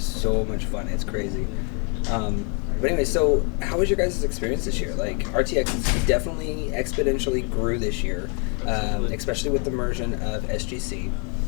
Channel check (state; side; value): quieter; right; 36.9 dB